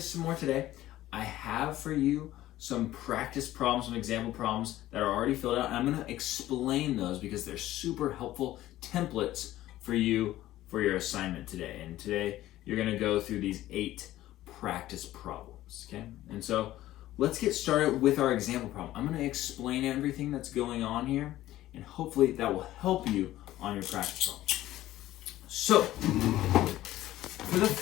some more today. I have for you some practice problems, some example problems that are already filled out, and I'm going to explain those because they're super helpful templates for you for your assignment today. And today you're going to go through these 8 practice problems, okay? And so let's get started with our example problem. I'm going to explain everything that's going on here, and hopefully that will help you on your practice problem. So, for the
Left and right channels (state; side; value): quieter; right; 14.8 dB